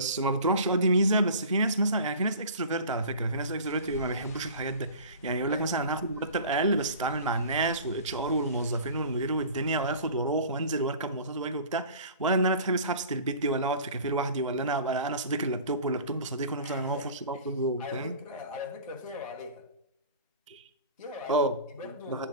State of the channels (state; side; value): inverted; both; correlation -0.41